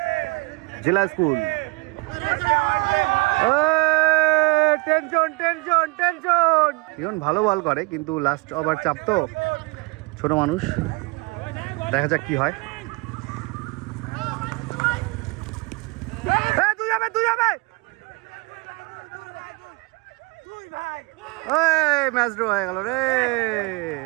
জেলা school. Tension tension tension. Riyan ভালো বল করে, কিন্তু লাস্ট ওভার চাপ তো, ছোট মানুষ। দেখা যাক কি হয়। তুই যাবে, তুই যাবে। ম্যাচ ড্র হয়ে গেল রে।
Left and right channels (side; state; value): left; quieter; 27.0 dB